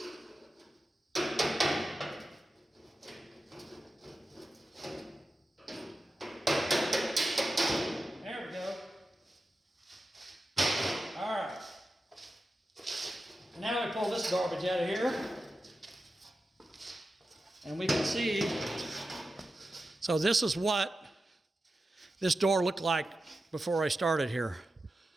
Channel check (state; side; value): normal; both; correlation 0.92